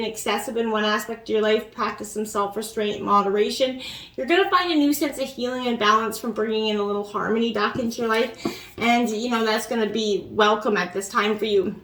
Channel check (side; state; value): both; identical; correlation 1.00